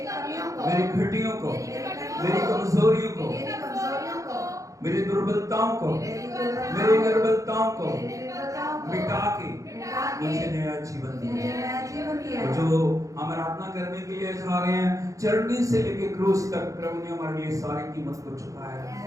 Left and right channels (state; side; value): late; left; 0.16 ms